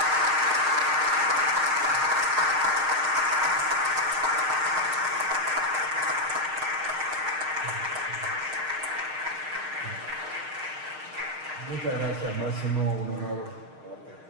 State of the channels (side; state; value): left; late; 6.5 ms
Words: Muchas gracias, Máximo. Un honor haberte